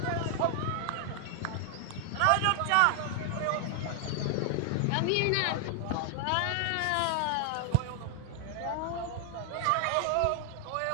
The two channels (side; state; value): both; different; correlation 0.00